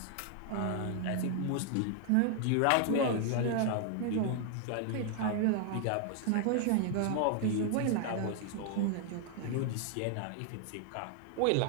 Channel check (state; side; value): different; both; correlation 0.00